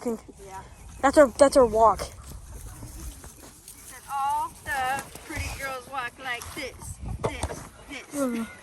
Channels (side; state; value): both; identical; correlation 1.00